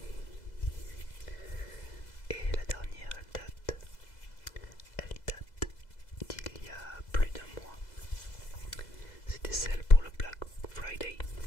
Et la dernière, elle date d'il y a plus d'1 mois. C'était celle pour le Black Friday.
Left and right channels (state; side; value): late; right; 2.0 ms